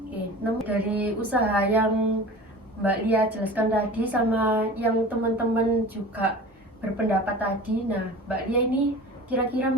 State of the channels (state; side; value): normal; both; correlation 0.37